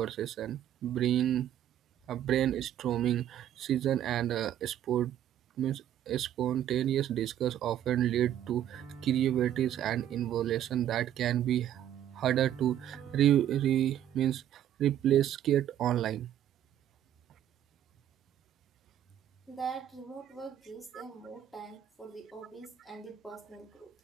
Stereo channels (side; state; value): left; quieter; 11.0 dB